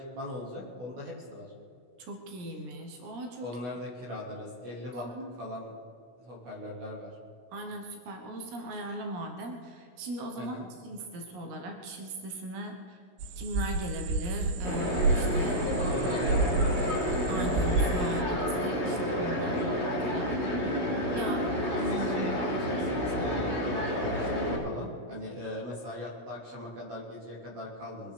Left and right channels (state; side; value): late; left; 16 ms